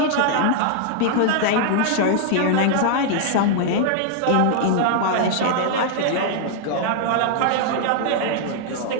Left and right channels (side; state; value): both; different; correlation -0.01